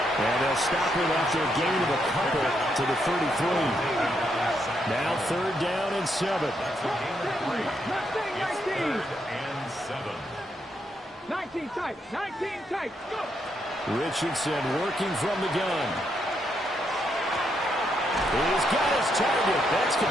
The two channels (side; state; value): both; normal; correlation 0.78